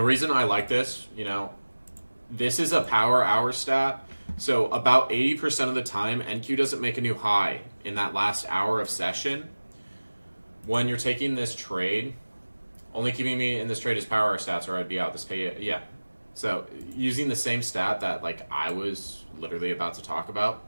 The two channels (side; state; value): both; inverted; correlation -1.00